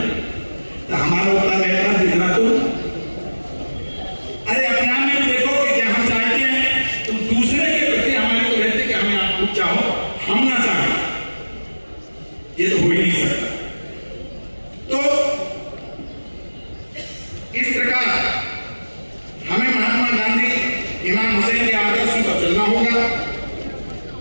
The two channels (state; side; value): inverted; both; correlation -1.00